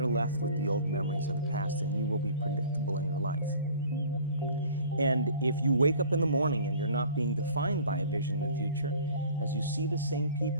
left with the old memories of the past, and you will be predictable in your life. And if you wake up in the morning and you're not being defined by a vision of the future, as you see the same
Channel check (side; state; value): both; inverted; correlation -0.48